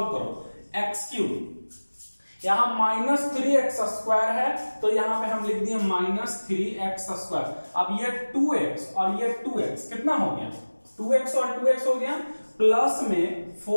करो x³, यहां माइनस 3x² है तो यहां पे हम लिख दिए माइनस 3x²। अब ये 2x और ये 2x कितना हो गया? 2x और 2x हो गया, प्लस में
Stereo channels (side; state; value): both; inverted; correlation -1.00